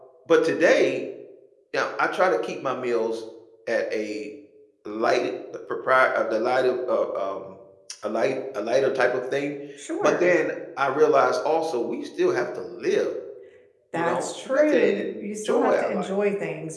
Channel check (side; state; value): both; identical; correlation 1.00